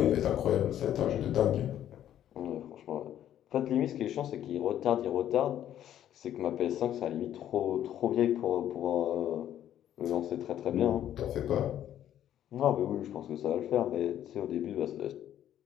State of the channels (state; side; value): quieter; right; 11.2 dB